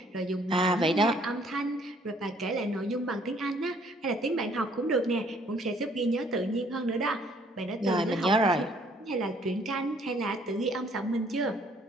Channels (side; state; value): both; normal; correlation 0.62